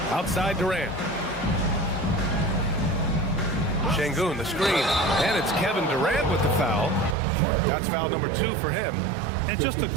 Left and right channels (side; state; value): left; drops out; at 7.2 s